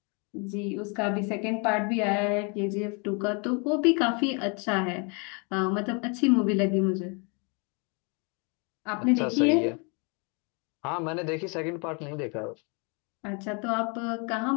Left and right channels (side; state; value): right; quieter; 34.1 dB